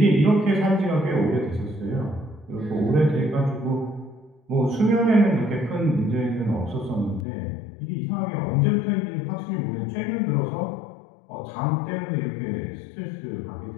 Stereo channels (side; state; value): right; drops out; at 7.2 s